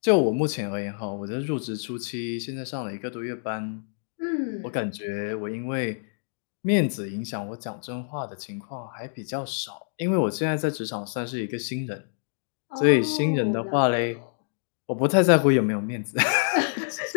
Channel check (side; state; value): right; silent; digital silence